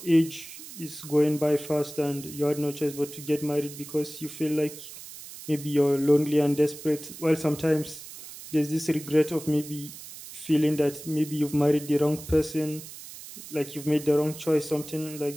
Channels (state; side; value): noise; right; hiss, 14 dB below the sound